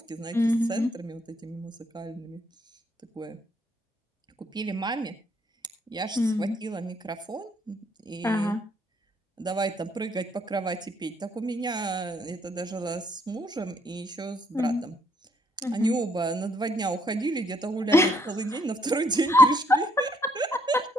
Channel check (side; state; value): both; normal; correlation 0.69